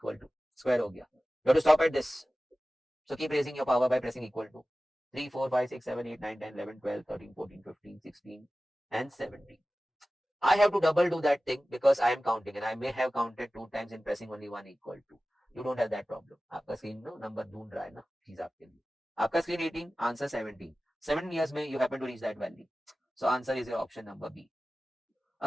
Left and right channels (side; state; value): both; normal; correlation 0.96